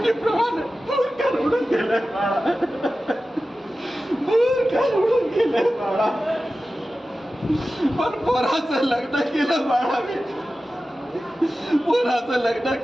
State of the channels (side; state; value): both; normal; correlation 0.94